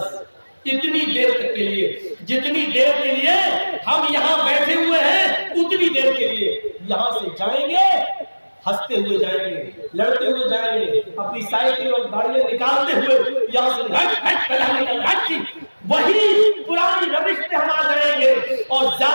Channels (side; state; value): both; inverted; correlation -1.00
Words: اتنی دیر تک کے لیے، جتنی دیر کے لیے ہم یہاں بیٹھے ہوئے ہیں اتنی دیر کے لیے یہاں سے جائیں گے، ہنستے ہوئے جائیں گے، لڑتے ہوئے جائیں گے، اپنی سائیکل اور گاڑیاں نکالتے ہوئے یہاں سے وہی پرانی روش پہ ہم آ جائیں گے، اور